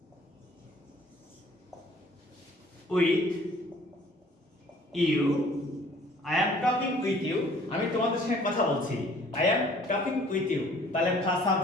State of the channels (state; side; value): normal; both; correlation 0.55